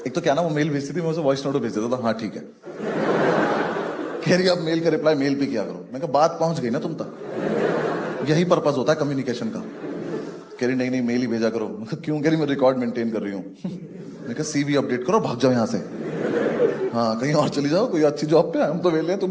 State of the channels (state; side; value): identical; both; correlation 1.00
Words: एक तो क्या ना वो मेल भेजती थी, मैं उसे वॉइस नोट भेज देता था, हाँ ठीक है। कह रही अब मेल का रिप्लाई मेल पे किया करो। मैं कहा बात पहुंच गई ना तुम तक, यही पर्पस होता है कम्युनिकेशन का। कह रही नहीं नहीं मेल ही भेजा करो। मैं कहा क्यों? कह रही मैं रिकॉर्ड मेंटेन कर रही हूँ। मैं कहा सीवी अपडेट करो, भाग जाओ यहाँ से, हाँ कहीं और चली जाओ, कोई अच्छी जॉब पे, हम तो वेले हैं,